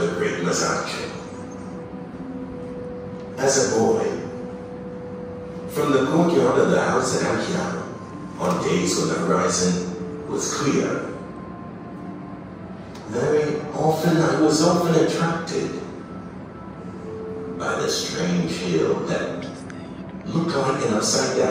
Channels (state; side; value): identical; both; correlation 1.00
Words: the great Masaccio. As a boy, from the courtyard of the house at Anchiano, on days when the horizon was clear, very often I was attracted by the strange hill that looked like an